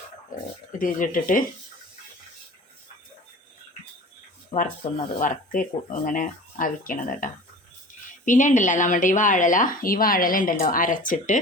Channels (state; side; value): normal; both; correlation 0.40